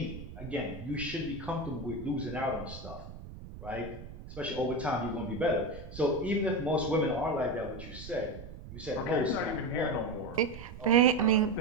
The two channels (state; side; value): noise; right; rumble, 13 dB below the sound